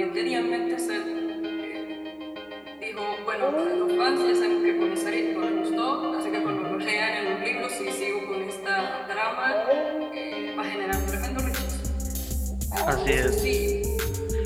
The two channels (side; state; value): both; identical; correlation 1.00